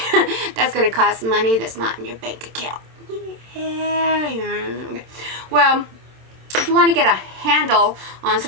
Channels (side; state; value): left; late; 27 ms